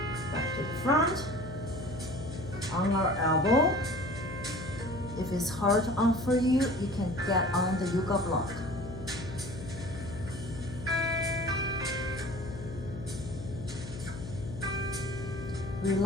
Back to the front. On our elbow. If it's hard on for you, you can get on the yoga block.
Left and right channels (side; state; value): left; noise; hum, 10 dB below the sound